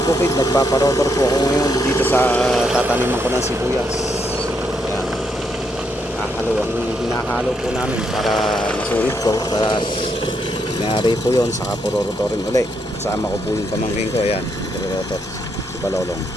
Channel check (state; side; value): normal; both; correlation 0.77